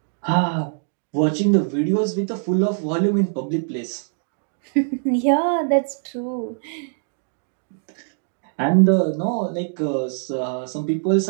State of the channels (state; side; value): silent; left; 64 dB below the other